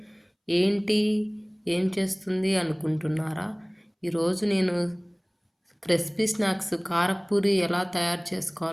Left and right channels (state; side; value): identical; both; correlation 1.00